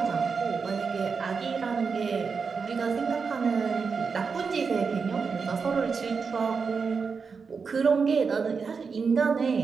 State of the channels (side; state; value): left; quieter; 5.3 dB